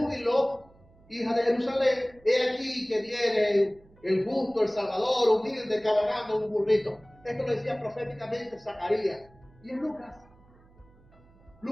hija de Jerusalén, he aquí que viene el justo, el Salvador, humilde, cabalgando un burrito. Esto lo decía proféticamente Zacarías. Y en Lucas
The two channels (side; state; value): right; noise; hum, 28 dB below the sound